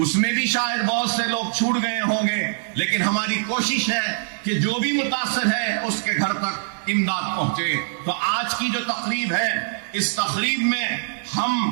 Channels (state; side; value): silent; left; 63 dB below the other